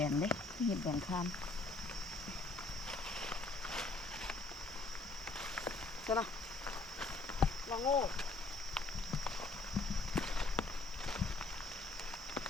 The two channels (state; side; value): quieter; right; 3.4 dB